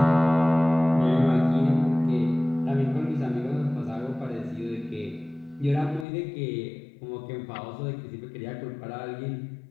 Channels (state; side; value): drops out; right; at 6.1 s